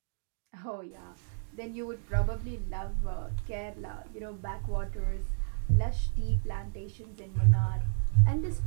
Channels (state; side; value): silent; left; digital silence